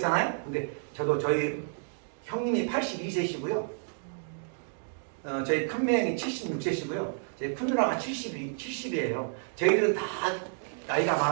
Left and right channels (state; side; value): silent; left; digital silence